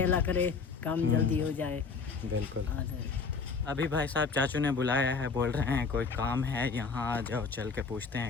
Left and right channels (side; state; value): right; quieter; 5.0 dB